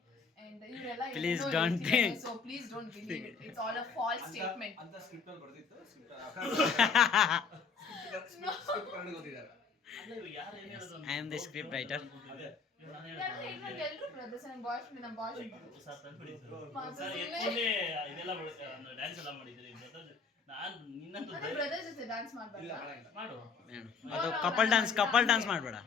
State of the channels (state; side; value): quieter; right; 5.3 dB